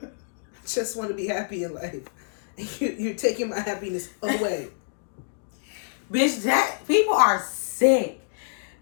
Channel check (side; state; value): right; silent; digital silence